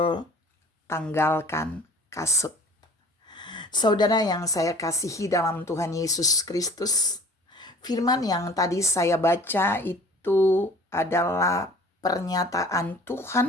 "Tanggalkan Kasut". Saudara yang saya kasihi dalam Tuhan Yesus Kristus, firman yang tadi saya baca itu adalah pernyataan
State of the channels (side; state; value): both; normal; correlation 0.47